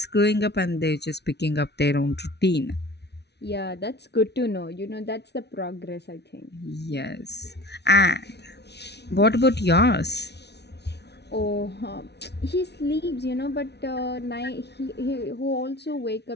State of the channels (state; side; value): late; right; 0.49 ms